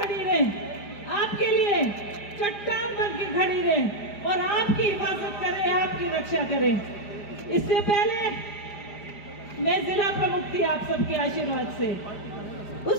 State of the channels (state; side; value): late; right; 4.9 ms